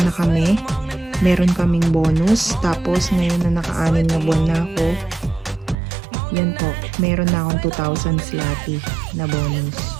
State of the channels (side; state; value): left; drops out; at 5.8 s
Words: na kami, meron kaming bonus. Tapos ngayon na naka-anim na buwan na ako, yan po, meron na akong 2,000 zloty na bonus.